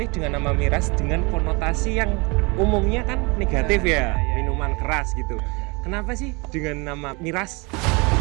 dengan nama miras dengan konotasi yang umumnya kan negatif ya, minuman keras gitu. Kenapa sih dengan nama miras?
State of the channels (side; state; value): left; quieter; 28.1 dB